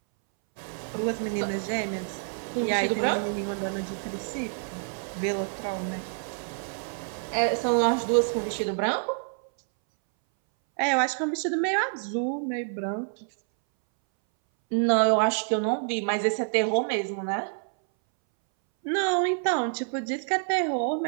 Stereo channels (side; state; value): left; silent; 60 dB below the other